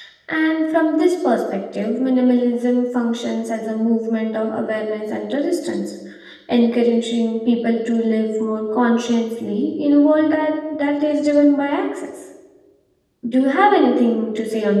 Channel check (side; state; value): both; identical; correlation 1.00